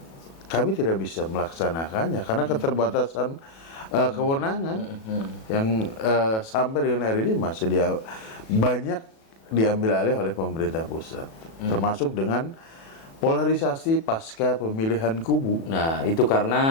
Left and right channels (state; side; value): late; right; 36 ms